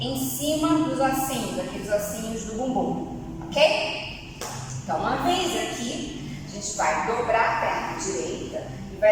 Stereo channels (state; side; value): identical; both; correlation 1.00